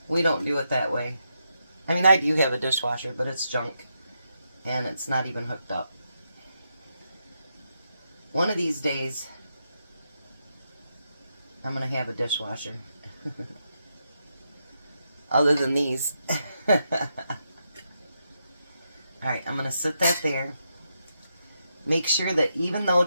we don't do it that way. I mean, I do have a dishwasher, but it's junk, and it's not even hooked up. One of these days, I'm going to have a dishwasher. Other than these. Alright, I'm going to sit that there. Make sure that even though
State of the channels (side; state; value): both; inverted; correlation -0.83